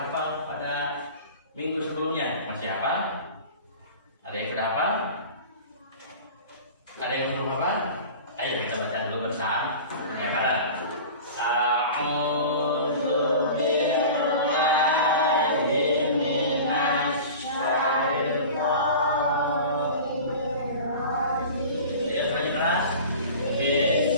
Ada yang belum apa? Ayo kita baca dulu bersama. Ya, bareng. A'udzu billahi minasy syaithanir rajim. Ya, tadi keras.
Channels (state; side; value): inverted; both; correlation -0.37